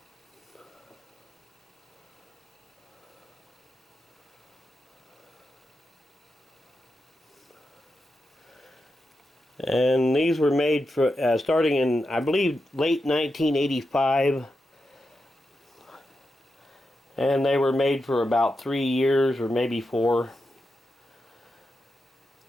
And these were made for starting in, I believe, late 1985. And they were made for about 3 years or maybe 4.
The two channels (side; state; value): both; normal; correlation 0.88